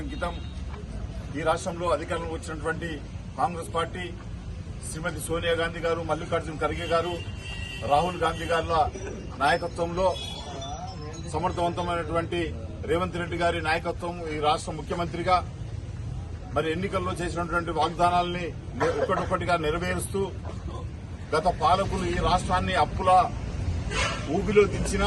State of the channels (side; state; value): both; identical; correlation 1.00